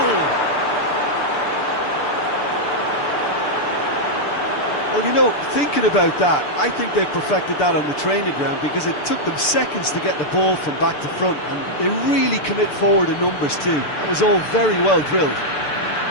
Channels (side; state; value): right; late; 6.8 ms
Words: Well, you know, thinking about that, I think they perfected that on the training ground because it took them seconds to get the ball from back to front, and they really commit forward in numbers too. That was all very well drilled.